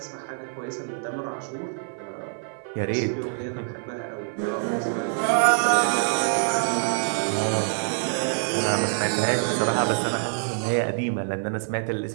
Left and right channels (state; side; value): silent; left; 60 dB below the other